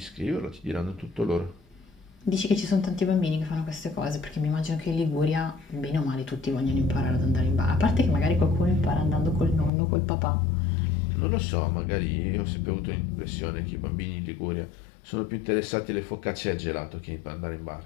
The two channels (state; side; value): drops out; right; at 9.7 s